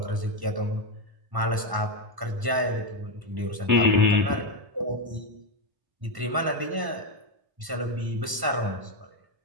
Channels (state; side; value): late; left; 1.1 ms